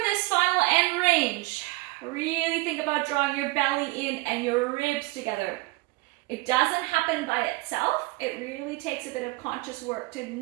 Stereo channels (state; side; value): quieter; left; 22.3 dB